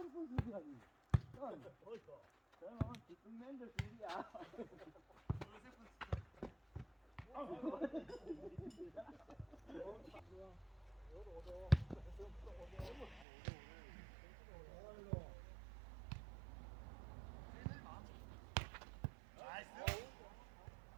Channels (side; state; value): left; drops out; at 13.2 s